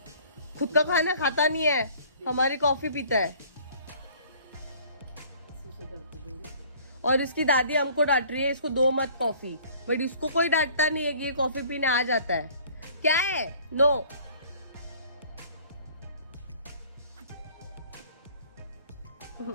खुद का खाना खाता नहीं है, हमारी कॉफी पीता है। और इसकी दादी हमको डांट रही है इसको दो मत कॉफी, बट इसको कोई डांटता नहीं है कि ये कॉफी पीने आ जाता है। क्या है? No.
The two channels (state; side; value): inverted; both; correlation -0.52